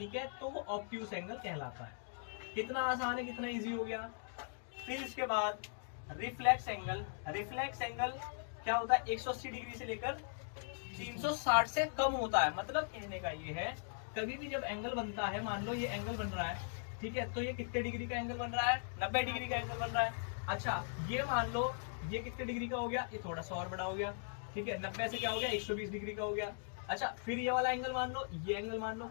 है, तो वो ऑब्ट्यूस एंगल कहलाता है। कितना आसान है, कितना इजी हो गया। फिर इसके बाद रिफ्लेक्स एंगल, रिफ्लेक्स एंगल क्या होता है, 180 डिग्री से लेकर 360 से कम होता है, मतलब कहने का ये है कभी भी जब एंगल बनता है, मान लो ये एंगल बन रहा है, ठीक है, तो ये कितने डिग्री का एंगल बन रहा है, 90 डिग्री का एंगल बन रहा है। अच्छा ये मान लो ये कितने डिग्री का हो गया, ये थोड़ा सा और बड़ा हो गया, ठीक है, 90 से क्या हो गया 120 डिग्री का हो गया। अच्छा फिर ये वाला एंगल मान लो, ये एंगल मान लो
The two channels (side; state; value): right; silent; digital silence